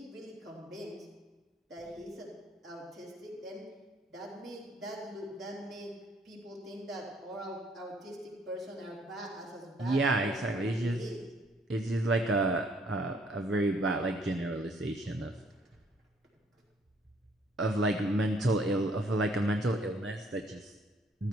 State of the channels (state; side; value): normal; both; correlation 0.64